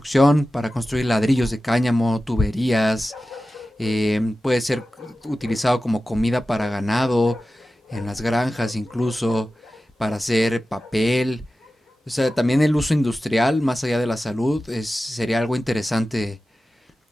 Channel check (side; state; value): both; normal; correlation 0.94